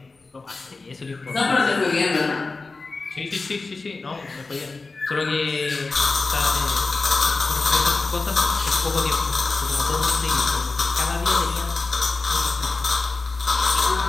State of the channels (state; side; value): quieter; right; 3.8 dB